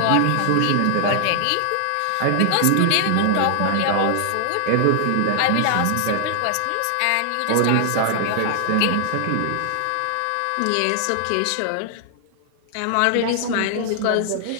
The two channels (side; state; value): both; different; correlation 0.00